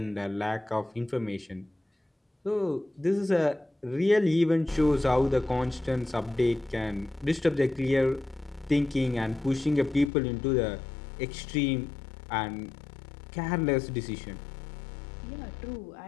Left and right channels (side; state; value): right; drops out; at 10.1 s